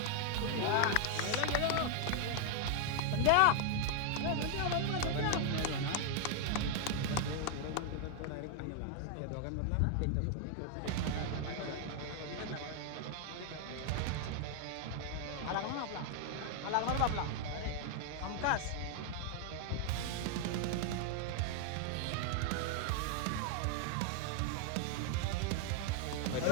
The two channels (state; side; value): different; both; correlation 0.00